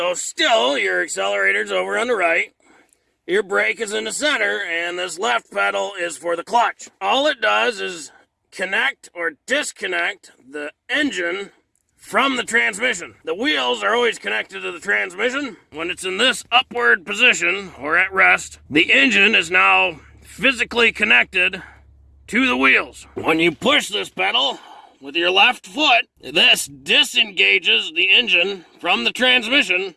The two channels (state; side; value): identical; both; correlation 1.00